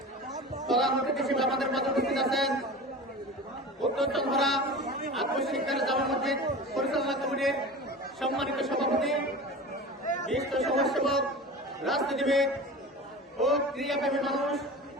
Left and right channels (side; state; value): both; normal; correlation 0.33